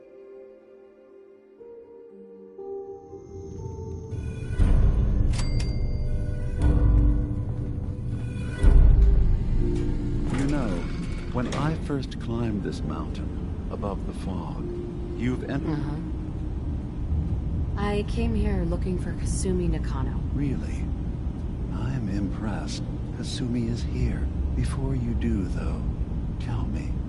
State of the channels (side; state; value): both; identical; correlation 1.00